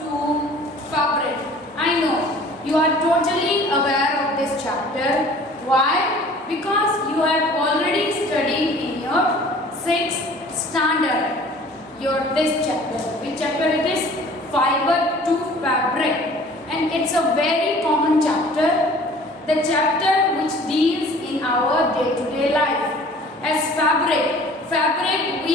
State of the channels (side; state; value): both; normal; correlation 0.49